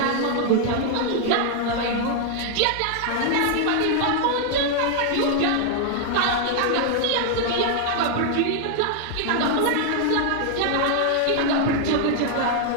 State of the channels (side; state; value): both; different; correlation 0.00